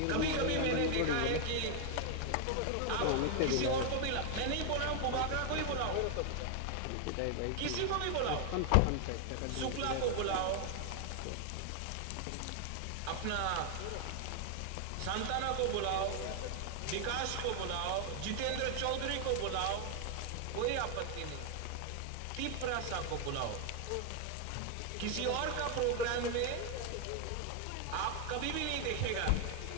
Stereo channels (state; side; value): different; both; correlation 0.00